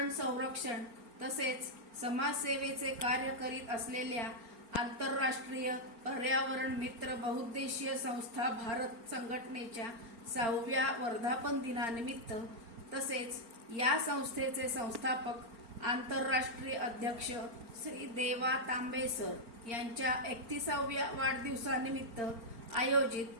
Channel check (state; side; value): late; left; 4.4 ms